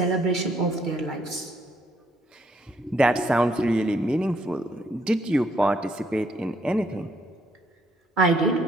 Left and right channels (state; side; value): normal; both; correlation 0.70